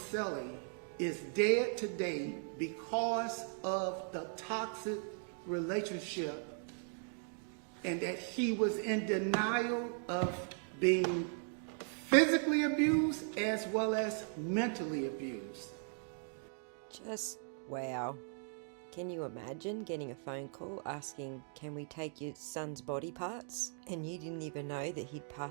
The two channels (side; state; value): left; silent; 52 dB below the other